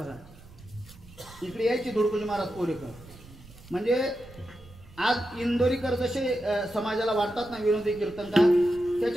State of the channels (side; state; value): right; noise; rumble, 21 dB below the sound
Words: इकडे यायचे धुडकोजी महाराज पोरेकर. म्हणजे आज इंदोरीकर जसे समाजाला वाटतात ना विनोदी कीर्तनकार,